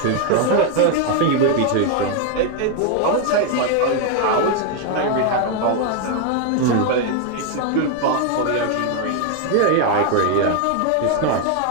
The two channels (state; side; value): different; both; correlation 0.01